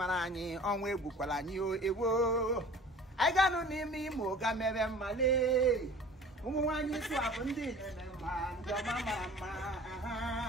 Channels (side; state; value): both; normal; correlation 0.44